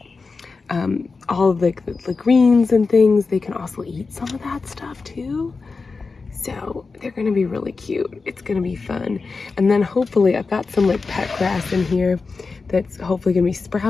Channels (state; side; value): quieter; right; 4.3 dB